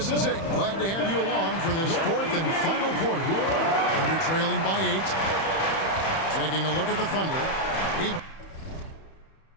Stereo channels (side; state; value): right; late; 31 ms